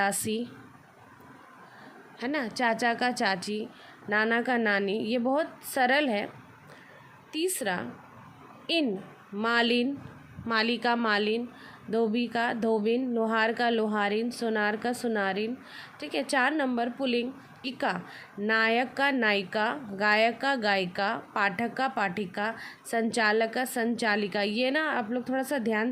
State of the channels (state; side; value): identical; both; correlation 1.00